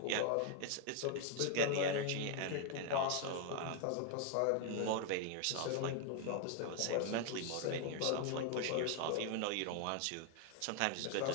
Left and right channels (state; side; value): different; both; correlation 0.01